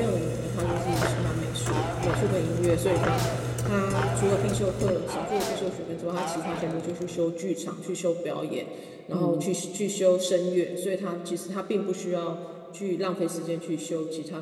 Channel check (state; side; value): identical; both; correlation 1.00